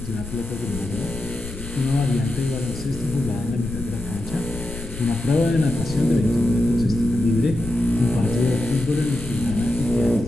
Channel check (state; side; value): noise; left; rumble, 11 dB below the sound